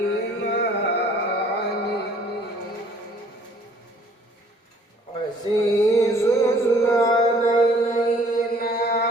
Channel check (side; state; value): both; normal; correlation 0.57